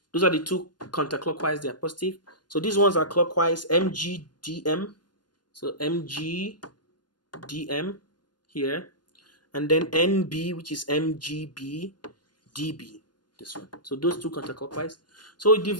those are the two counterclockwise, they are positive. So these ones are clockwise, MGDM. So MGDM here. And then NB, which is MGB, DB. This one. So those two counterclockwise. So the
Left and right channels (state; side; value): late; right; 0.70 ms